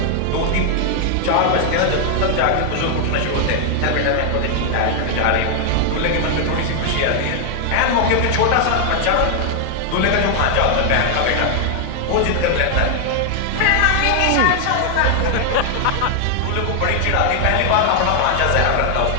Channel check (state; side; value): different; both; correlation 0.00